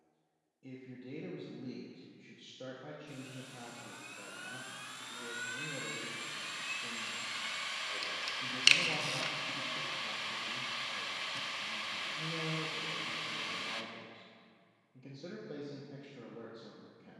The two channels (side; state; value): both; identical; correlation 1.00